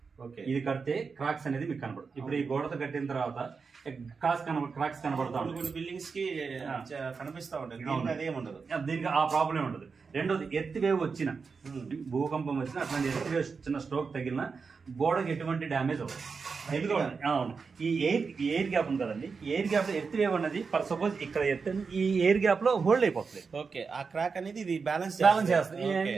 ఇది కడితే క్రాక్స్ అనేది మీకు కనబడదు. ఇప్పుడు ఈ గోడతో కట్టిన తర్వాత క్రాక్స్ కనబడతా ఉంటాయి. బిల్డింగ్స్ కి కనిపిస్తా ఉంటాయి. దీనికి ఆ ప్రాబ్లం ఉండదు. రెండోది ఎర్త్ వేవ్ వచ్చిన, భూకంపం వచ్చిన, అట్లాంటి ఎర్త్ వేవ్ చిన్న స్ట్రోక్ తగిలిన గోడకి ఎటువంటి డ్యామేజ్ అవ్వదు. అవును, ఈ ఎయిర్ గ్యాప్ ఉంది కదండి, ఎయిర్ గ్యాప్ లో ఎర్త్ వేవ్ అనేది ఫర్ సపోజ్ ఇక్కడ ఎర్త్ ఈ ఎయిర్ గ్యాప్ లో హోల్డ్ అయిపోతుంది. ఓకే, ఆ క్రాక్ అనేది ఇది బ్యాలెన్స్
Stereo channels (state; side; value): quieter; left; 5.1 dB